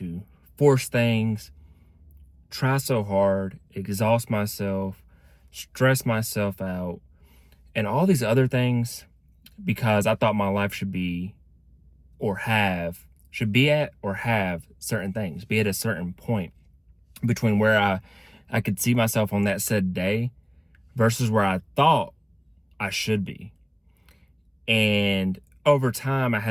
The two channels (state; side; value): identical; both; correlation 1.00